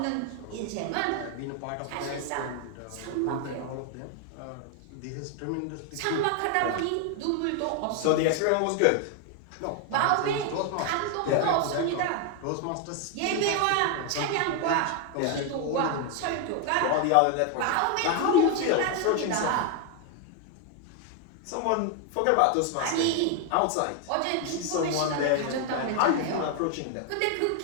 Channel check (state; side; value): different; both; correlation 0.01